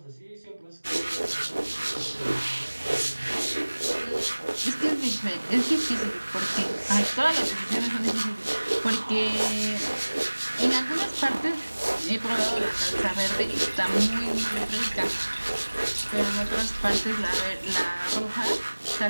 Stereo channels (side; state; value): both; inverted; correlation -1.00